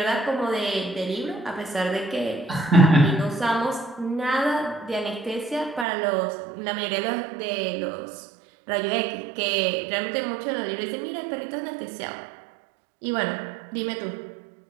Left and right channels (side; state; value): left; drops out; at 5.9 s